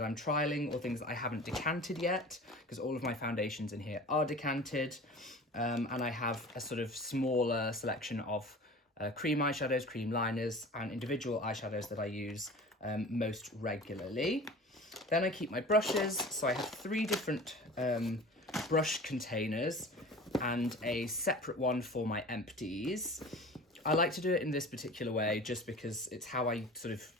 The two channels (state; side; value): normal; both; correlation 0.39